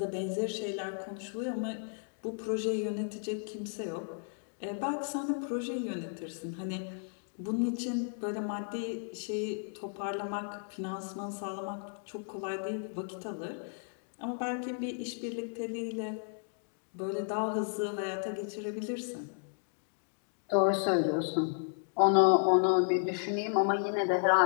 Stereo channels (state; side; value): silent; right; 55 dB below the other